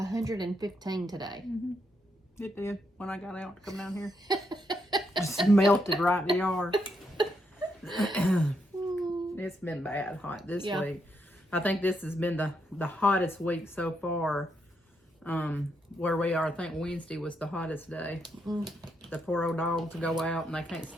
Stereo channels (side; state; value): both; normal; correlation 0.79